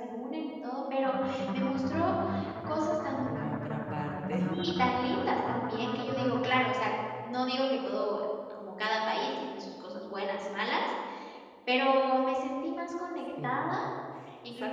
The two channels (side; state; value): both; identical; correlation 1.00